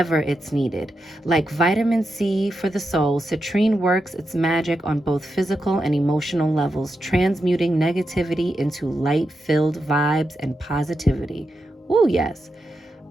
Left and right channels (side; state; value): both; normal; correlation 0.87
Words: it's needed. Like vitamin C for the soul, citrine works its magic on both physical and emotional levels, transmuting negativity into light-filled vibes and positivity. Ooh, yes.